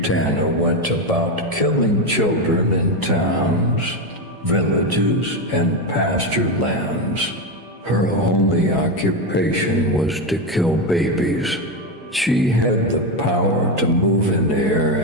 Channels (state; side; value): normal; both; correlation 0.12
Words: went about killing children in towns, villages, and pasture lands. Her only occupation was to kill babies. She had the power to move in air